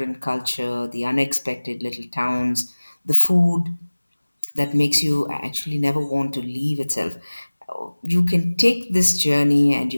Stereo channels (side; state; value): both; inverted; correlation -1.00